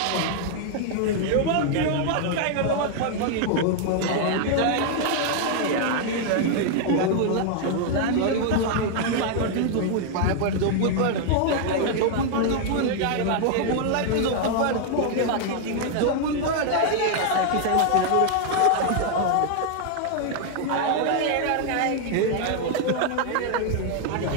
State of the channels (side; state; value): both; different; correlation 0.00